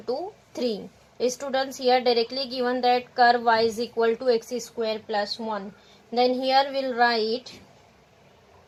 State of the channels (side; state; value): both; identical; correlation 1.00